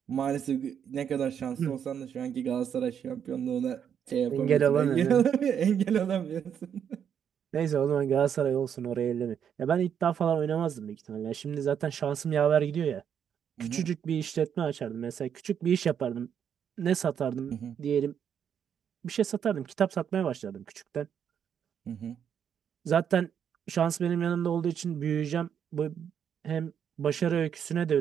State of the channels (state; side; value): quieter; left; 8.3 dB